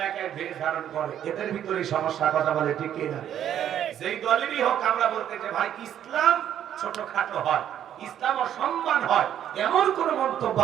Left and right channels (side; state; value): left; quieter; 10.3 dB